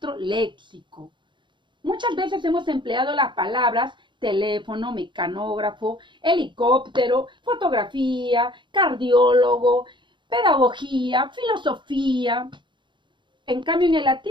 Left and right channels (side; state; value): left; late; 0.23 ms